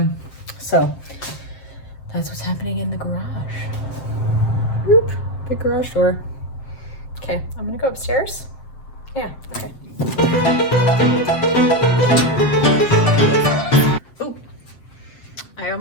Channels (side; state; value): right; late; 7.6 ms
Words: that's what's happening in the garage. Whoop, big garage door. Okay, I'm going to go upstairs. Yeah, okay. Oh, I